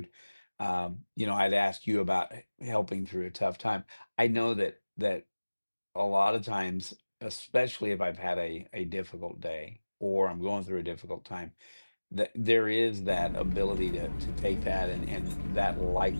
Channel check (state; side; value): inverted; both; correlation -1.00